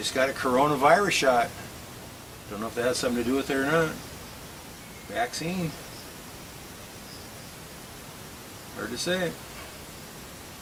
got a coronavirus shot. Don't know if that has something to do with it or not. Vaccine. Hard to say.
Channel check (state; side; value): identical; both; correlation 1.00